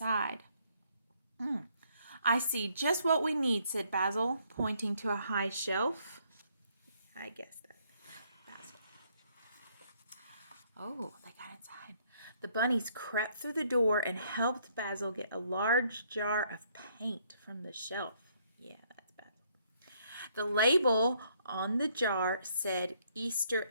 I see just what we need, said Basil, pointing to a high shelf. I guess that. Basil. Oh, they got inside. The bunnies crept through the door and helped Basil get a large jar of paint from the shelf. Yeah, that's Basil. The label on the jar said Easter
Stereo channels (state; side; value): inverted; both; correlation -0.68